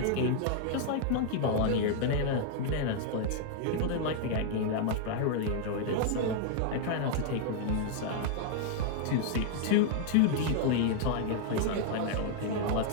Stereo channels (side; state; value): both; different; correlation 0.00